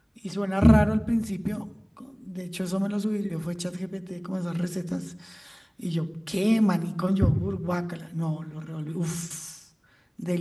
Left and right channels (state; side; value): identical; both; correlation 1.00